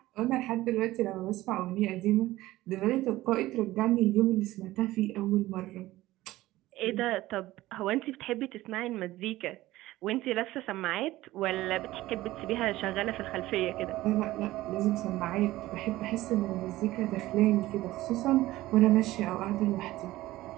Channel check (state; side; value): quieter; left; 16.8 dB